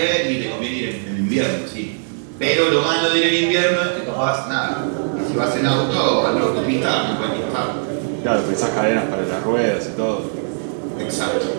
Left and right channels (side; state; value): left; silent; digital silence